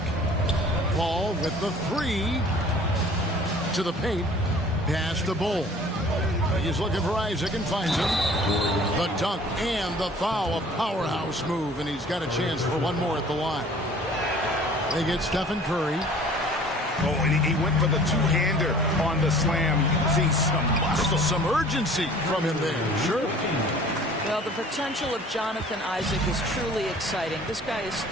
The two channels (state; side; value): normal; both; correlation 0.49